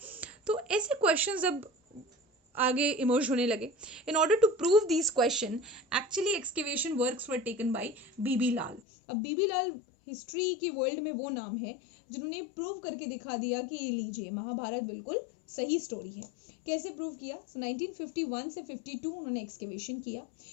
तो ऐसे क्वेश्चंस अब आगे इमर्ज होने लगे. In order to prove this question, actually excavation works were taken by B B Lal. अब बीबी लाल हिस्ट्री के वर्ल्ड में वो नाम है जिन्होंने प्रूव करके दिखा दिया कि ये लीजिए महाभारत बिल्कुल सही स्टोरी है. कैसे प्रूव किया? सो 1951 से 52 उन्होंने एक्सकेवेशन किया.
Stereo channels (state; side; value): drops out; right; at 8.8 s